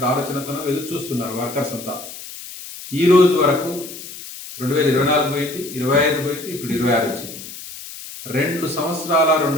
ఆలోచనతో ఎదురు చూస్తున్నారు వర్కర్స్ అంతా. ఈ రోజు వరకు 2024 పోయింది, 25 పోయింది, ఇప్పుడు 26 వచ్చింది. 2 సంవత్సరాల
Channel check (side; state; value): left; noise; hiss, 13 dB below the sound